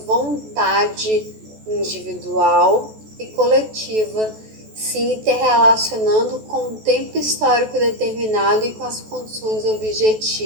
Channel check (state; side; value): late; left; 14 ms